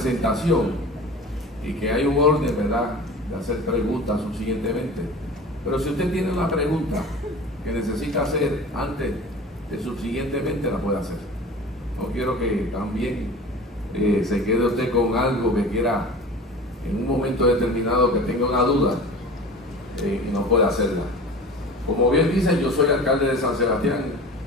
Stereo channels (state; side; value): normal; both; correlation 0.38